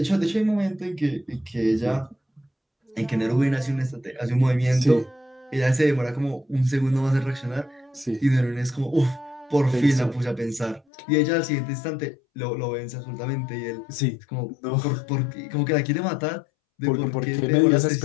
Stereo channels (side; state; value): right; drops out; at 10.8 s